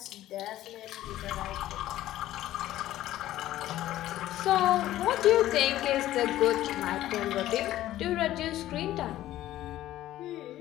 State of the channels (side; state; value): right; quieter; 14.2 dB